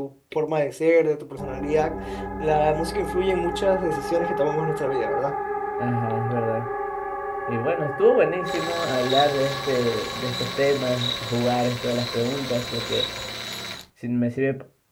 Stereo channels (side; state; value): both; identical; correlation 1.00